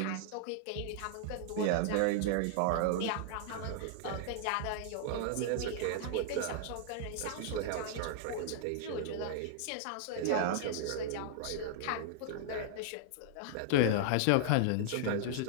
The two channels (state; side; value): different; both; correlation -0.01